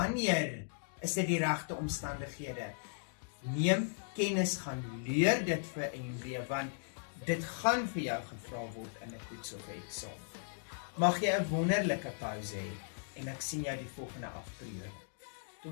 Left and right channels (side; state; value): right; silent; digital silence